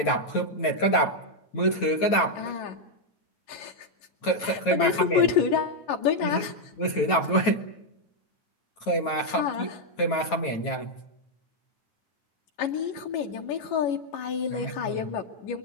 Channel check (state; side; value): late; right; 9.1 ms